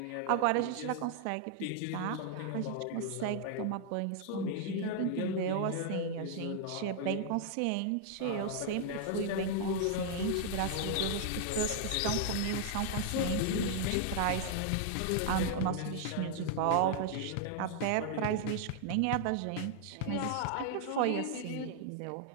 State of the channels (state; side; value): different; both; correlation 0.00